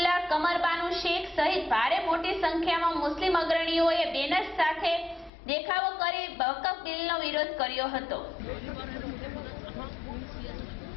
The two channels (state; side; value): drops out; right; at 5.3 s